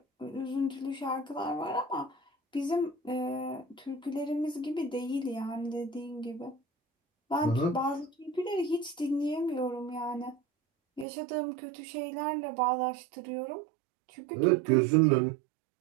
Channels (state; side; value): drops out; left; at 11.1 s